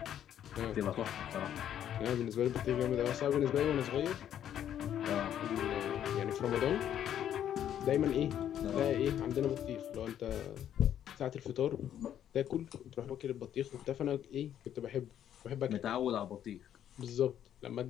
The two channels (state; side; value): quieter; right; 10.3 dB